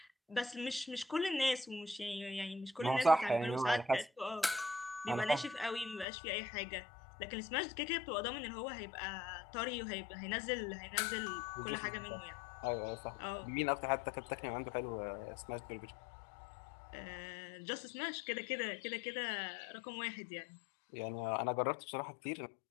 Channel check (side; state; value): right; drops out; at 6.1 s